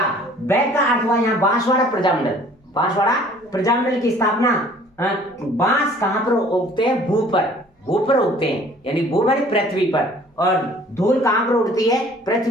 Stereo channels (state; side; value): normal; both; correlation 0.53